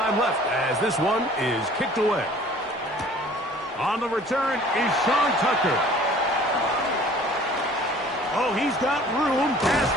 left as this one is kicked away. On the return is Sean Tucker. Oh, he's got room past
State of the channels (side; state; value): both; normal; correlation 0.50